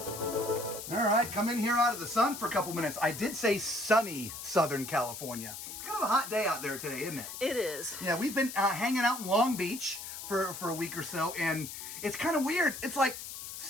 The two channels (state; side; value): noise; left; hiss, 9 dB below the sound